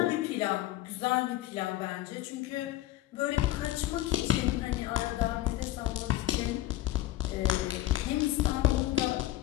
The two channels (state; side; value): quieter; right; 15.1 dB